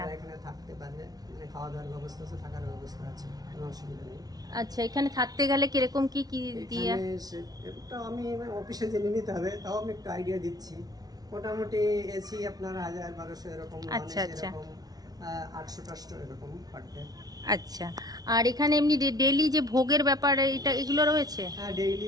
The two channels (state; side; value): late; left; 0.19 ms